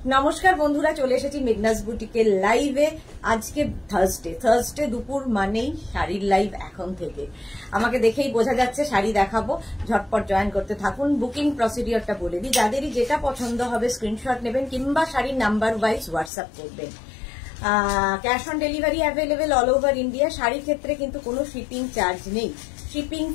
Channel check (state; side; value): drops out; right; at 16.3 s